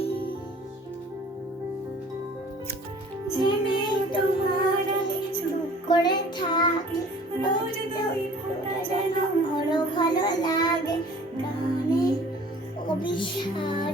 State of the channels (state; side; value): normal; both; correlation 0.49